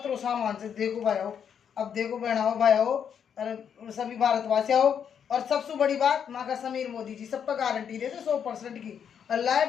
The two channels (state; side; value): quieter; right; 7.9 dB